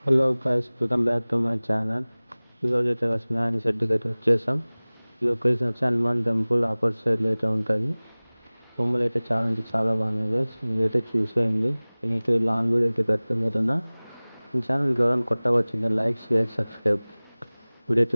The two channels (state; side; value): inverted; both; correlation -1.00